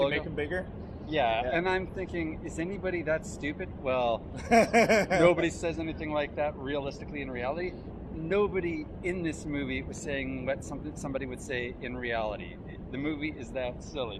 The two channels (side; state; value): both; identical; correlation 1.00